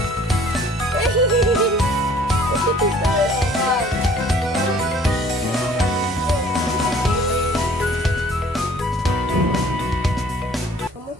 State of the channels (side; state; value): both; normal; correlation 0.54